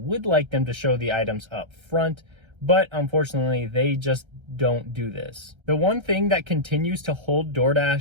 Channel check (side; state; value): left; late; 1.3 ms